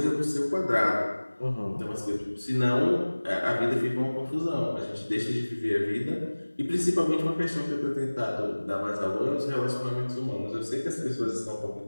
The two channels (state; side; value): inverted; both; correlation -1.00